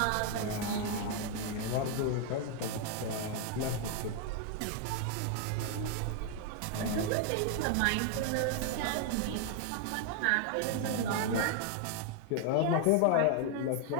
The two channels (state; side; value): different; both; correlation 0.00